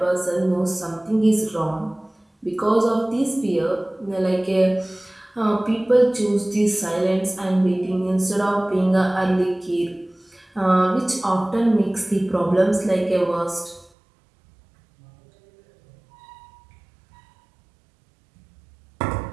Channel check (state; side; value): drops out; left; at 13.9 s